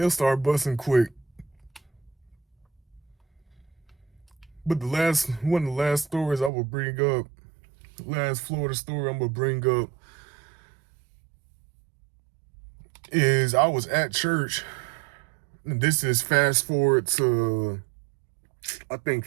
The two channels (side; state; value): left; drops out; at 6.5 s